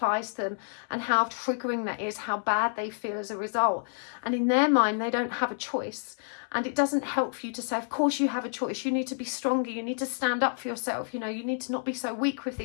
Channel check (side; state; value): right; silent; 59 dB below the other